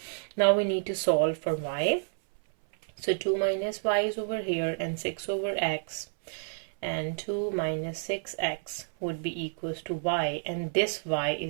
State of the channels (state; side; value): silent; left; 58 dB below the other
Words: Now we need to solve for y. So 2 minus y is over here, and 6 over x, and 2 minus 6x would be equals to y, and this y